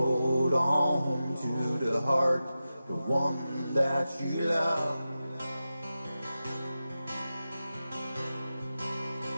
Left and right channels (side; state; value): both; inverted; correlation -0.93